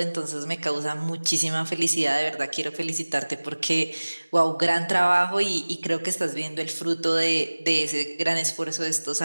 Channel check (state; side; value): inverted; both; correlation -1.00